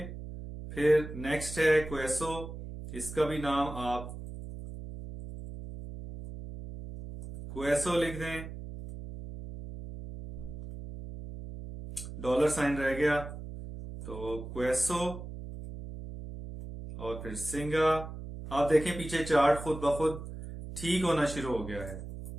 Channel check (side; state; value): right; noise; hum, 10 dB below the sound